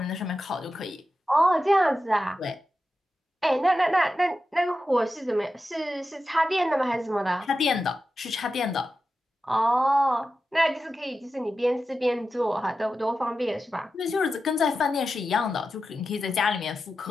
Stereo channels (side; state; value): both; normal; correlation 0.91